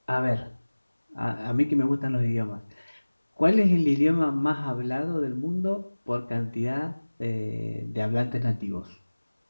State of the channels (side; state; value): both; inverted; correlation -1.00